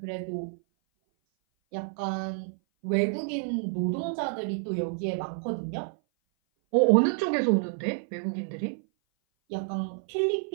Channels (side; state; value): left; silent; 56 dB below the other